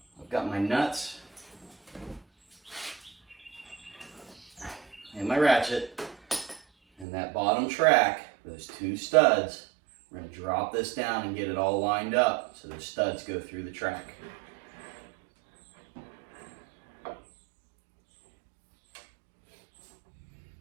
I've got my nuts and my ratchet and that bottom track, those two studs. We're going to drop this down and get it all lined up so those studs go through the track.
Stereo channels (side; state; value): left; drops out; at 7.1 s